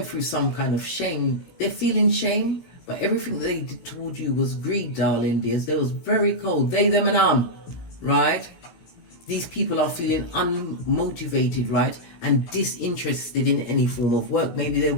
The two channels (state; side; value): late; right; 17 ms